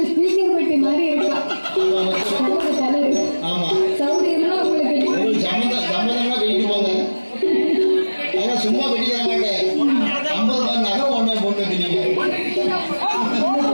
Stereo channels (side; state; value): both; inverted; correlation -1.00